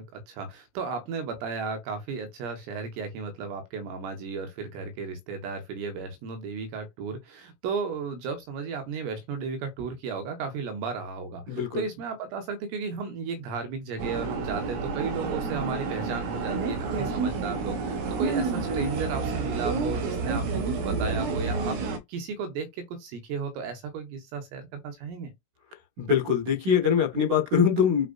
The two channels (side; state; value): left; late; 17 ms